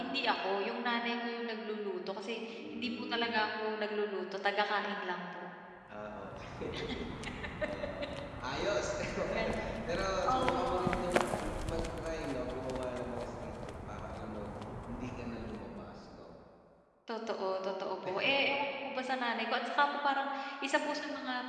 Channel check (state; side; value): identical; both; correlation 1.00